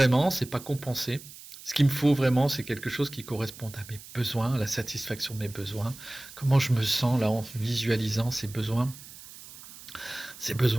c'est pas compenser. Ce qu'il me faut vraiment, c'est quelque chose qui corresponde à mes besoins, à la satisfaction de mes besoins. Comment je me sens là en visualisant ces besoins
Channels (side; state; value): right; noise; hiss, 17 dB below the sound